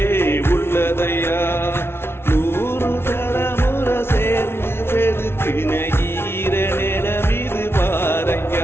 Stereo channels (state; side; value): late; right; 0.12 ms